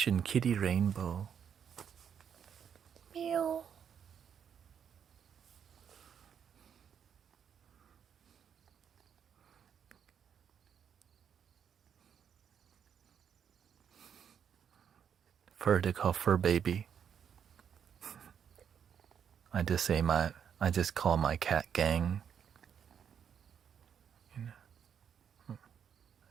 Kitty Rainbow. Meow. They call fur baby. I just call my cat gang. I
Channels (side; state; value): left; quieter; 8.0 dB